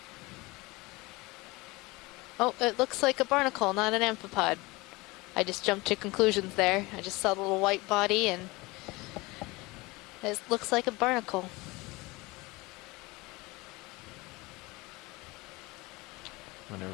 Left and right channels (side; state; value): right; quieter; 23.0 dB